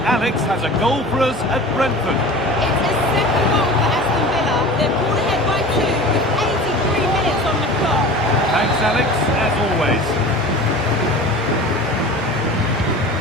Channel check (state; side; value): normal; both; correlation 0.37